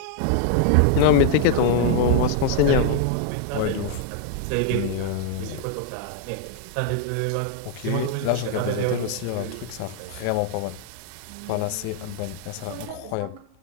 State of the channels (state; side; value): different; both; correlation 0.00